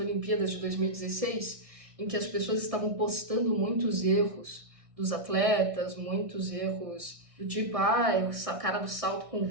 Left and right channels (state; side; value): late; left; 1.6 ms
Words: de 2016, em que as pessoas estavam postando muitos erros dos atletas, muitos erros do tipo, o cara do salto com